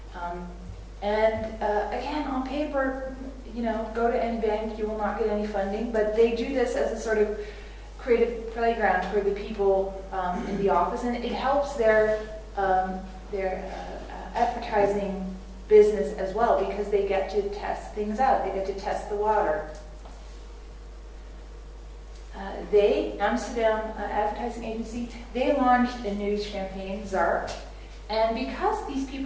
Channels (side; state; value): both; identical; correlation 1.00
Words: Again, on paper, go to any bank, you will not get any funding, but they do this as a sort of creative playground for the people in the office, and it helps their advertising business as well, because they get to test things out. They get to test the water. Amsterdam advertising agency, they launched a new champagne, Zark. And because these